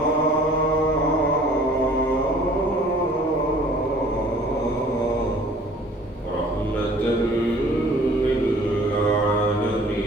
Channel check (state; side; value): normal; both; correlation 0.52